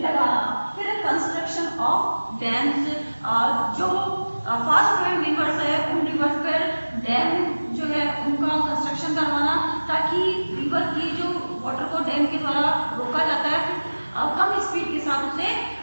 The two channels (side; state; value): both; inverted; correlation -1.00